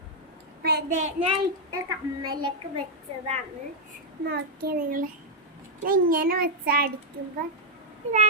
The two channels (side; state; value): both; normal; correlation -0.05